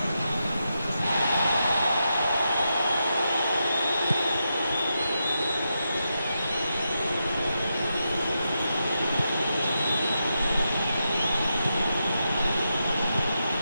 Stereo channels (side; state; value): both; inverted; correlation -0.86